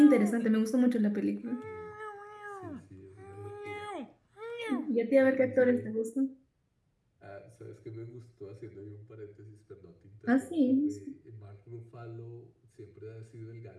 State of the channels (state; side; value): identical; both; correlation 1.00